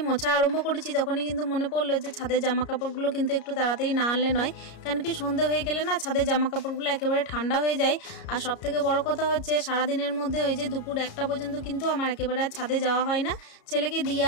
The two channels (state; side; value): late; right; 33 ms